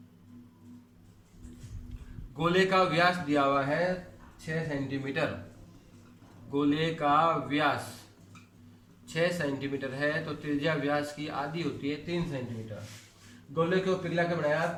गोले का व्यास दिया हुआ है 6 सेंटीमीटर। गोले का व्यास 6 सेंटीमीटर है तो त्रिज्या व्यास की आधी होती है 3 सेंटीमीटर। गोले को पिघला के बनाया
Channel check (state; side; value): identical; both; correlation 1.00